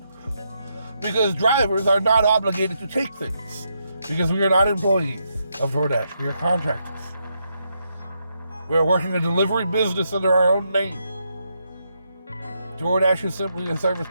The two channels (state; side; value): inverted; both; correlation -0.80